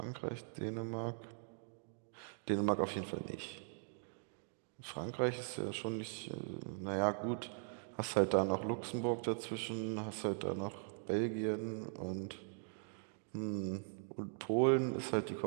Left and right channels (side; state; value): left; silent; digital silence